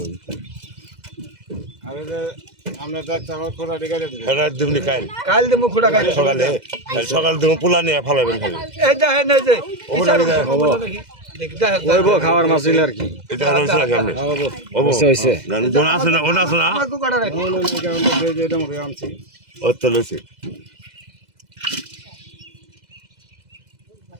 আমি যে আমরা যাচ্ছি আমার খোলা ডিগারে দিই রাত দিমনি কাল কাল দেবো খুঁড়া খাই সকালে সকাল দিম পোলা নিয়ে ফালাবেন খালি এই যা হে না যে ওটা নিয়ে দেখদা হে ওইবো খাওয়ার মাছ হইলে আর কি এটা রইছে না কেমনে ওবো হইছে ওনা আছে না ওনা আছে না আমার কো কাটা রাখি এটা মরে আনছি ও তো লইছে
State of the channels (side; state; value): left; late; 2.0 ms